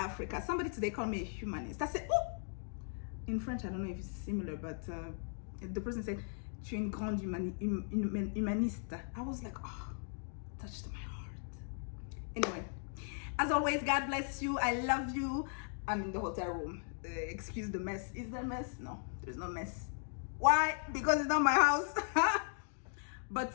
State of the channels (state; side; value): silent; right; 53 dB below the other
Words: Somebody today called me a humanist. I said, oh, in French, I don't know if it's similar, but the person said, tu es une grande humaniste. I was like, oh, touched my heart. Anyway, As always, God bless you. I love you. I'm in the hotel room. Excuse the mess. Is there a mess? No, there's no mess. Why? Because it's not my house. But